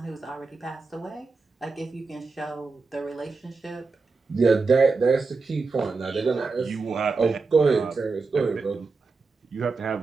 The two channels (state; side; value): quieter; left; 4.2 dB